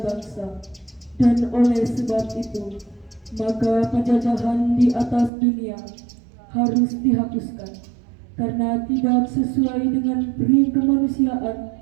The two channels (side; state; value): left; drops out; at 5.3 s